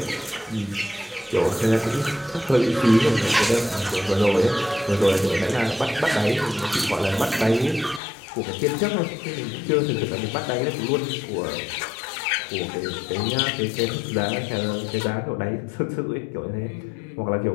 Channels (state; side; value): drops out; right; at 8.0 s